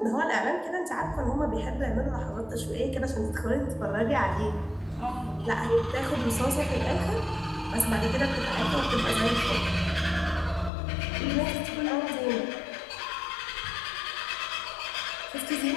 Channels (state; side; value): drops out; right; at 10.7 s